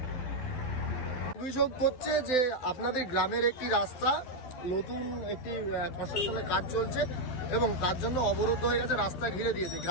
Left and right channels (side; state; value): right; late; 12 ms